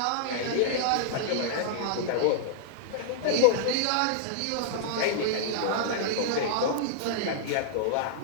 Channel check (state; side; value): different; both; correlation -0.01